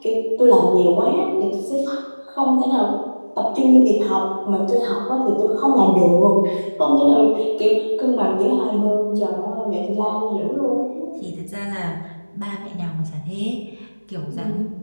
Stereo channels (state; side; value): inverted; both; correlation -1.00